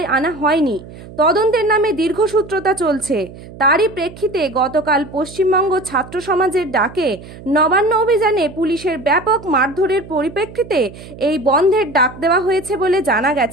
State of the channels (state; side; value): noise; right; hum, 17 dB below the sound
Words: আনা হয়নি। তদন্তের নামে দীর্ঘসূত্রতা চলছে। তারই প্রেক্ষিতে গতকাল পশ্চিমবঙ্গ ছাত্র সমাজের ডাকে নবান্ন অভিযানে পুলিশের ব্যাপক মারধরের পরিপ্রেক্ষিতে এই বন্ধের ডাক দেওয়া হয়েছে বলে জানা